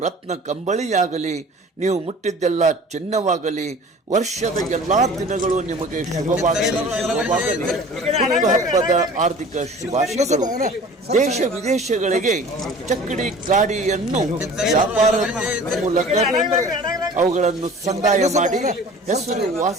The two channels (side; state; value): both; normal; correlation 0.44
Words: ರತ್ನ ಕಂಬಳಿಯಾಗಲಿ, ನೀವು ಮುಟ್ಟಿದ್ದೆಲ್ಲ ಚಿನ್ನವಾಗಲಿ, ವರ್ಷದ ಎಲ್ಲಾ ದಿನಗಳು ನಿಮಗೆ ಶುಭವಾಗಲಿ. ಹುಟ್ಟುಹಬ್ಬದ ಆರ್ಥಿಕ ಶುಭಾಶಯಗಳು. ದೇಶ ವಿದೇಶಗಳಿಗೆ ಚಕ್ಕಡಿ ಗಾಡಿಯನ್ನು ವ್ಯಾಪಾರದ ಮೂಲಕ ಅವುಗಳನ್ನು ಸಂದಾಯ ಮಾಡಿ